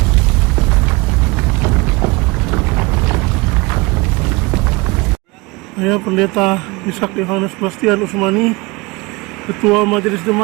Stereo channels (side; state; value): left; quieter; 25.0 dB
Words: Saya Pendeta Ishak Yohanes Bastian Usmani, Ketua Majelis